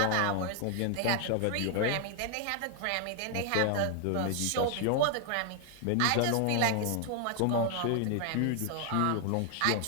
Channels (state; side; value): different; both; correlation 0.00